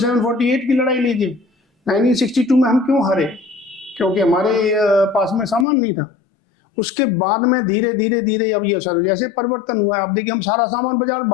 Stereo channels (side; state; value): right; drops out; at 5.7 s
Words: की लड़ाई लीजिए। 1962 में हम क्यों हारे? क्योंकि हमारे पास में सामान नहीं था। उसके बाद में धीरे धीरे धीरे अब ये सर जैसे परिवर्तन हुआ है। आप देखिए, हम सारा सामान बाजार